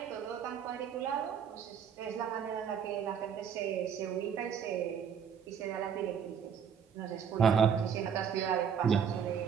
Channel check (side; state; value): left; quieter; 7.5 dB